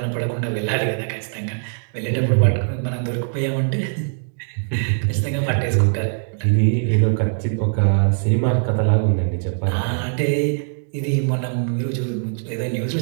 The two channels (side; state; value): left; silent; digital silence